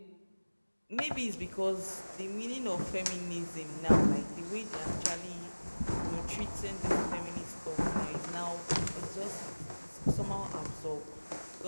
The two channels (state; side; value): inverted; both; correlation -1.00